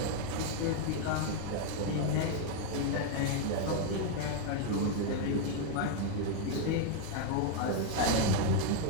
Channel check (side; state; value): both; different; correlation 0.00